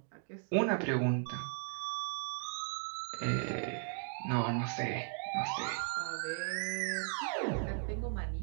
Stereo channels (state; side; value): silent; left; 53 dB below the other